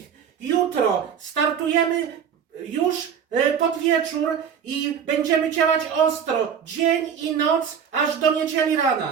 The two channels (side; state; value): left; quieter; 7.7 dB